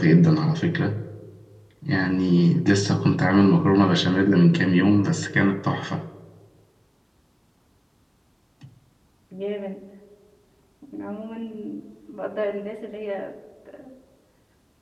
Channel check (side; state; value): both; identical; correlation 1.00